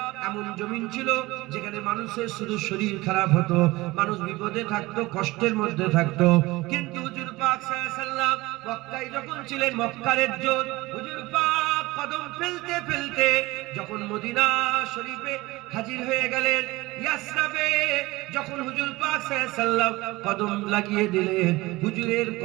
এমন জমিন ছিল যেখানে মানুষের শুধু শরীর খারাপ হতো, মানুষ বিপদে থাকতো, কষ্টের মধ্যে থাকতো। কিন্তু হুজুর পাক সাল্লাল্লাহু আলাইহি সাল্লাম মক্কায় যখন ছিলেন, মক্কার ইজ্জত হুজুর পাক কদম ফেলতে ফেলতে যখন মদিনা শরীফে হাজির হয়ে গেলেন, ইয়াসরাবে যখন হুজুর পাক সাল্লাল্লাহু আলাইহি সাল্লাম কদম লাগিয়ে দিলেন, হুজুরের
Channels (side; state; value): left; quieter; 20.4 dB